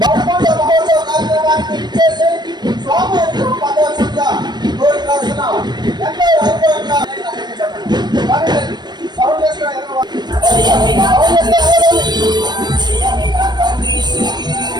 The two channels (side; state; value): left; late; 0.21 ms